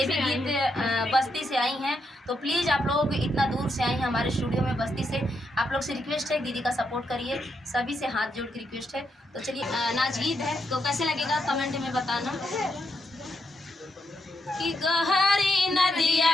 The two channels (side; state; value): both; normal; correlation 0.81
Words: भी गीत बस्ती से आई हैं, तो प्लीज़ आप लोग इतना दूर से आई हैं हमारे स्टूडियो में बस्ती से। आप लोग से रिक्वेस्ट है, दीदी का सपोर्ट करिए, सभी से हाथ जोड़ के रिक्वेस्ट है। तो चलिए नाच गीत है, तो कैसे लगेगा कमेंट में बताना। कि गहरी